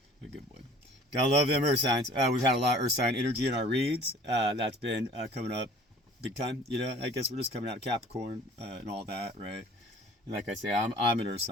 A good boy. Gotta love them earth signs. We've had a lot of earth sign energy in our reads. That's been coming up big time. I guess we're just coming out of Capricorn and all that, right? And like I say, I'm an earth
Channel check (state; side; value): normal; both; correlation 0.49